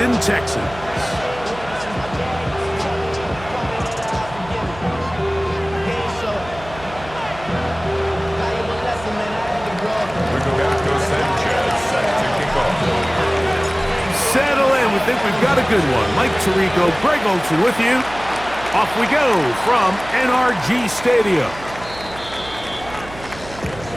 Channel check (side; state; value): right; noise; hum, 16 dB below the sound